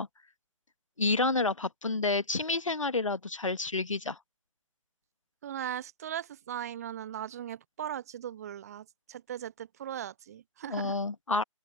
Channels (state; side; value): normal; both; correlation -0.20